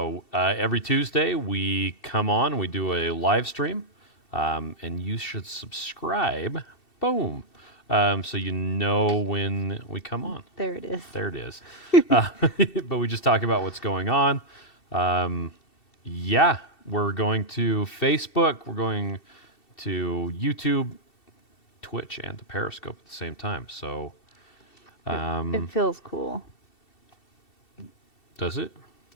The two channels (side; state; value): right; late; 2.7 ms